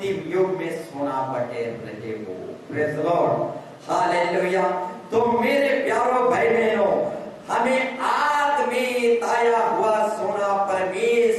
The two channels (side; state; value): both; identical; correlation 1.00